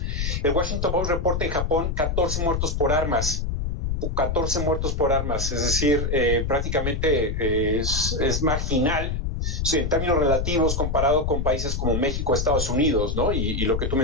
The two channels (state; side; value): noise; left; rumble, 1 dB below the sound